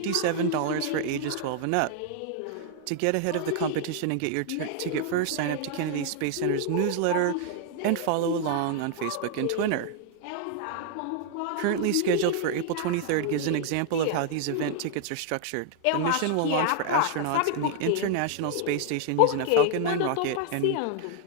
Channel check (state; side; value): different; both; correlation 0.00